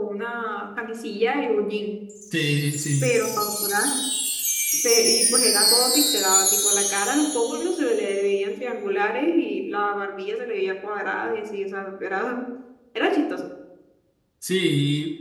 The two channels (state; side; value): identical; both; correlation 1.00